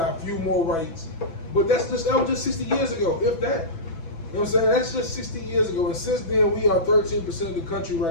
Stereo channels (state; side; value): late; right; 6.1 ms